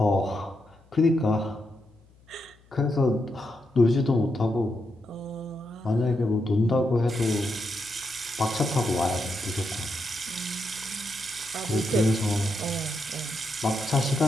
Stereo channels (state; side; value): noise; left; hum, 29 dB below the sound